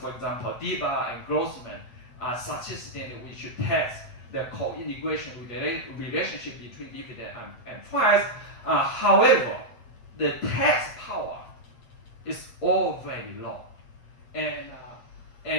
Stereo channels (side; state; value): right; late; 8.5 ms